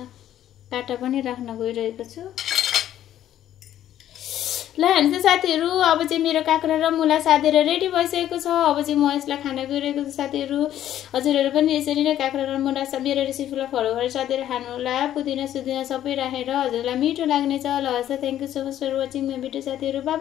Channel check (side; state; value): right; quieter; 11.7 dB